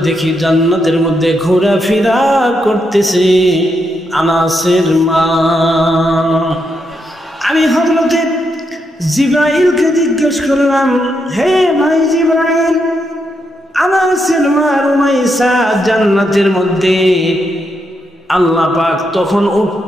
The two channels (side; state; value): both; normal; correlation 0.81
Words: দেখি জান্নাতের মধ্যে ঘোরাফেরা করতেছে আনাসের মা। আমি হযরতে জিবরাইলকে জিজ্ঞেস করলাম, হে ভাই জিবরাইল, আনাসের মা রুমাইসা জান্নাতের মধ্যে? আল্লাহ পাক তখন